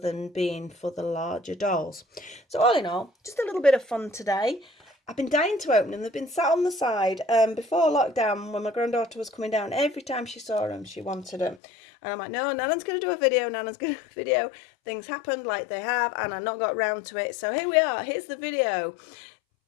being for the larger dolls. So all in all, just a little bit of fun today. I've been dying to open them. They've been sat on the side. Before lockdown, when my granddaughter was coming down, every time she saw them, she wanted them. And I'm like, no, Nana's going to do a video. Nana's going to do a video. Things happened like they have, and I not got round to it. So here we are. Here's the video.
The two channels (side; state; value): right; drops out; at 11.6 s